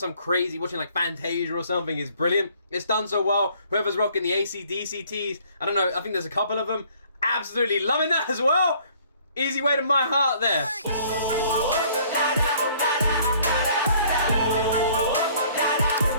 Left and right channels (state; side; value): inverted; both; correlation -0.58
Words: crazy, watching like Fantasia or something. It's brilliant. It's done so well. Whoever's rocking the AC/DC tees, I don't know, I think there's a couple of them. Absolutely loving that as well. Easy way to my heart there.